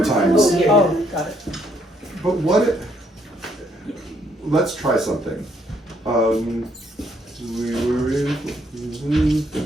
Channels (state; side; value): normal; both; correlation 0.70